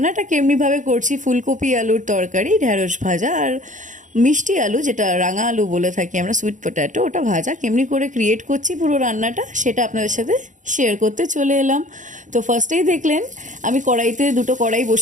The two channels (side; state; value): left; late; 0.36 ms